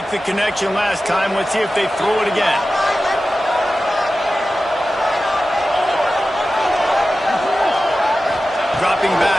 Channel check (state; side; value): normal; both; correlation 0.94